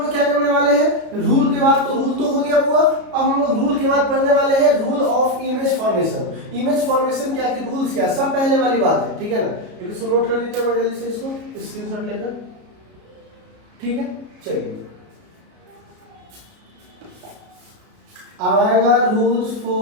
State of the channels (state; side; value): late; left; 33 ms